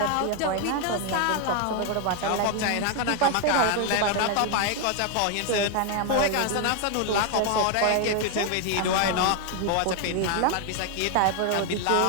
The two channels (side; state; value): both; different; correlation 0.01